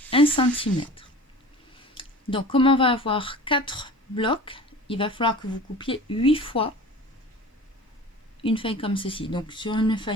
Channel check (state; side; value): normal; both; correlation 0.39